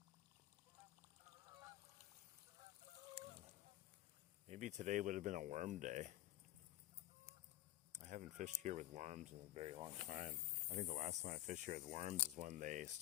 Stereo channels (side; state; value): right; quieter; 15.3 dB